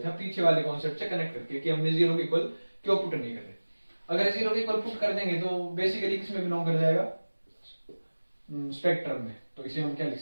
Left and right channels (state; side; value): inverted; both; correlation -1.00